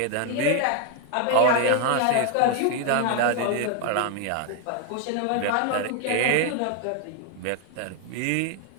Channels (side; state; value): both; different; correlation 0.00